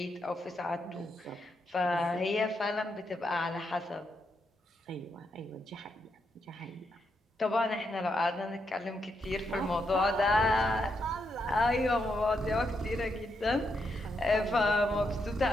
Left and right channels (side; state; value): both; normal; correlation 0.81